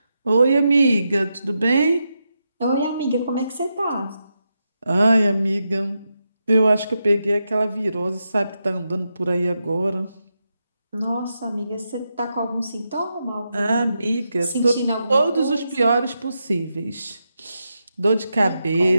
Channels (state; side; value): inverted; both; correlation -0.86